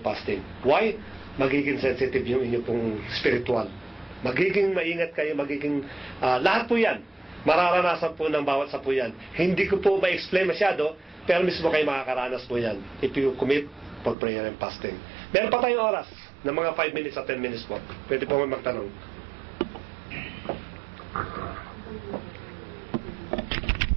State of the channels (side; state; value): left; drops out; at 14.2 s